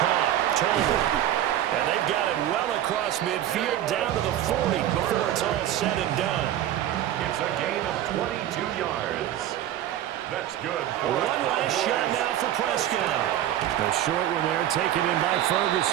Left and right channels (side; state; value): left; quieter; 12.0 dB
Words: Tolbert. And they've got it well across midfield down to the 40 before it's all said and done. It's a gain of 22 yards. That's good. One last shot now for Prescott. The short one there taken in by